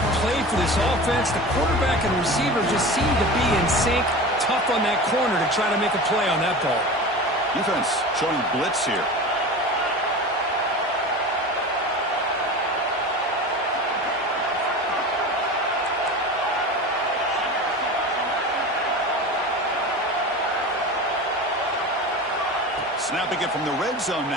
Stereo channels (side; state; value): both; normal; correlation 0.32